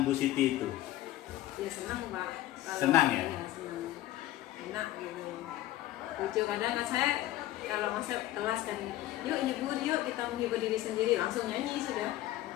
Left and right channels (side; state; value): right; quieter; 14.9 dB